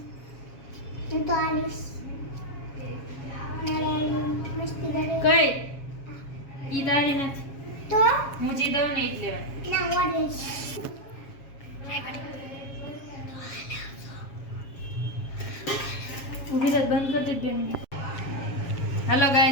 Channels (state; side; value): late; right; 7.3 ms